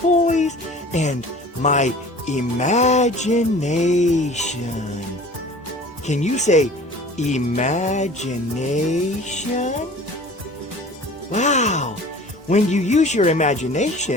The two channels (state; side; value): normal; both; correlation 0.44